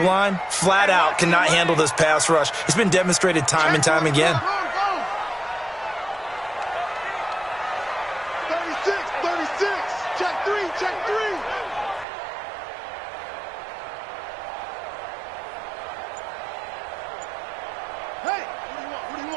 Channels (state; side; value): drops out; left; at 12.1 s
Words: flat out, cannot handle this pass rush. It's been demonstrated time and time again. 36. Check 3. Hey, what do you